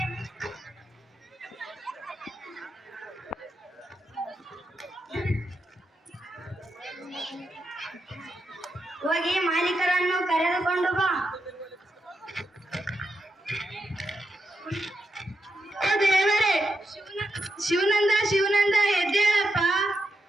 ಹೋಗಿ ಮಾಲೀಕರನ್ನು ಕರೆದುಕೊಂಡು ಬಾ. ದೇವರೇ, ಶಿವನಂದ ಶಿವನಂದ ಎದ್ದೇಳಪ್ಪ.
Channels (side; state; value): both; normal; correlation 0.85